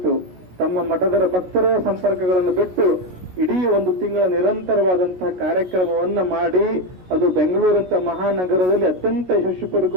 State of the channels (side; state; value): left; late; 17 ms